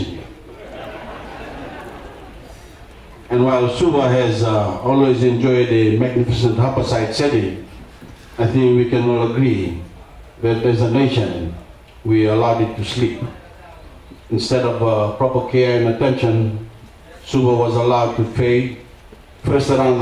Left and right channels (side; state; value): both; identical; correlation 1.00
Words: here. And while Suva has always enjoyed a magnificent harborside setting, I think we can all agree that as a nation, we allowed it to sleep. Instead of proper care and attention, Suva was allowed to fade, first around